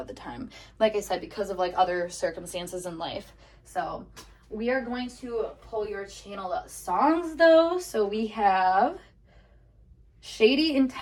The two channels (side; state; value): both; identical; correlation 1.00